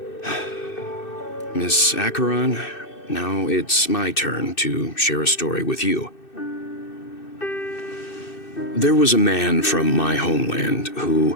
Miss Acheron, now it's my turn to share a story with you. There was a man from my homeland who,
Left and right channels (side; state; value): right; late; 2.6 ms